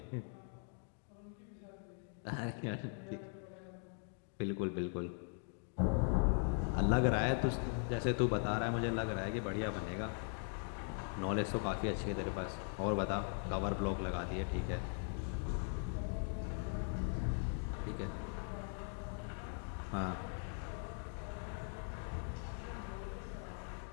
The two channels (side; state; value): right; silent; 51 dB below the other